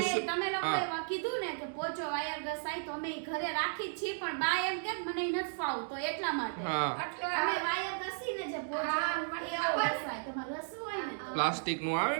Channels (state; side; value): silent; left; digital silence